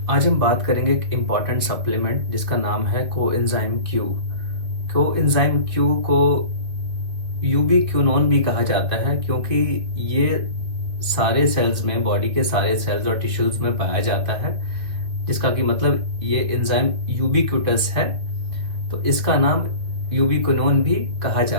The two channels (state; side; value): late; left; 2.6 ms